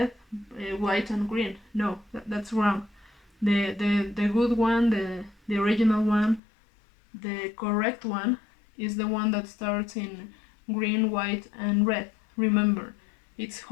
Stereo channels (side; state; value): right; drops out; at 6.4 s